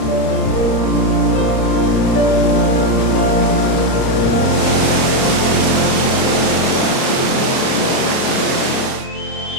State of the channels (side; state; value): right; late; 31 ms